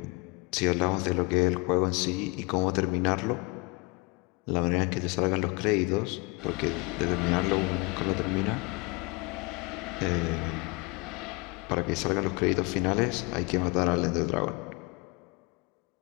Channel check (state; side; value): quieter; right; 27.5 dB